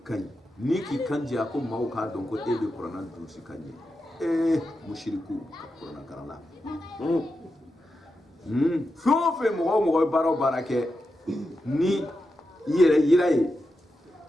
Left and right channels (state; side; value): normal; both; correlation 0.89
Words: ni ki kandi ko mawo ka don ko ebe korona du si kandi mushriku korona karala fe mo baro barake ni yiraye